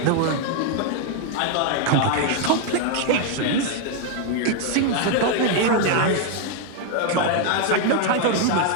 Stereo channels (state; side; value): different; both; correlation 0.01